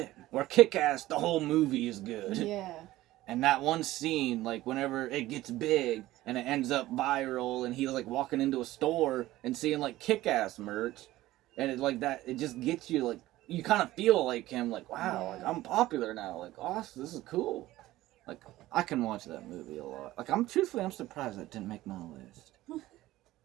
Where Kick-Ass, the whole movie is good. Yeah. And that one scene, like whenever it gets big and it ends up viral, and he's like walking into a store and seeing like Kick-Ass merch, and it like that, it just gets you like you kind of feel like him, like wow, like I'm popular now, like awesome, this is cool. Like I can watch that movie a lot. Like I'm surprised that didn't make my list.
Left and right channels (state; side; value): quieter; left; 16.3 dB